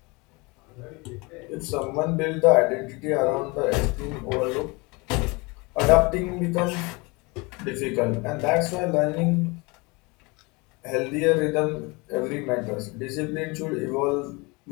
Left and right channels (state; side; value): quieter; right; 26.7 dB